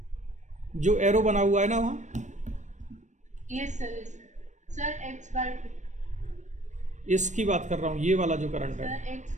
जो एरो बना हुआ है ना वहाँ, yes sir x by 2 इसकी बात कर रहा हूँ। ये वाला जो करंट है, sir x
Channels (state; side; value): late; left; 0.35 ms